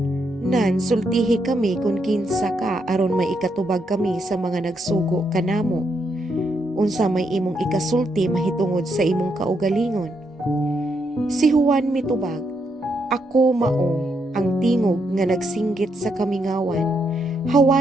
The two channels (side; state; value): both; normal; correlation 0.78